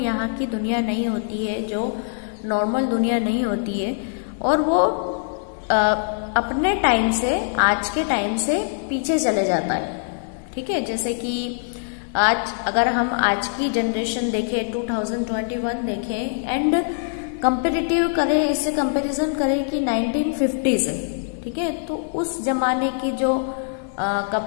की दुनिया नहीं होती है, जो नॉर्मल दुनिया नहीं होती है। और वो अपने टाइम से, आज के टाइम से पीछे चले जाता है, ठीक है। जैसे कि आज अगर हम आज की जनरेशन देखें, 2021 देखें, एंड कंपेरेटिव करें, इससे कंपैरिजन करें कि 1950 से, ठीक है। तो उस जमाने की जो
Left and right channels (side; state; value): right; silent; digital silence